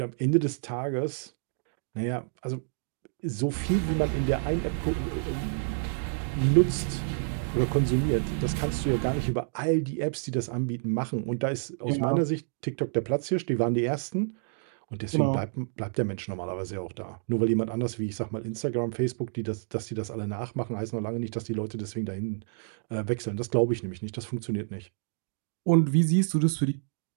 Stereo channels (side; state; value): left; silent; digital silence